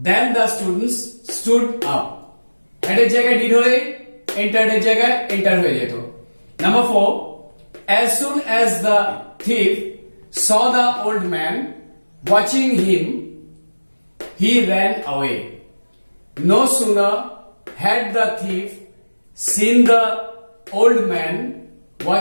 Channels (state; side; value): inverted; both; correlation -1.00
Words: then the students stood up. Had এর জায়গায় did হলে entered এর জায়গায় enter হয়ে যেত। Number 4, as soon as the thief saw the old man watching him, he ran away. No sooner had the thief seen the old man